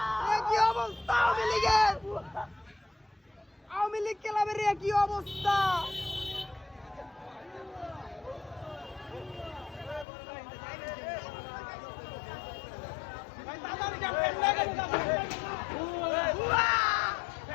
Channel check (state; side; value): drops out; right; at 10.1 s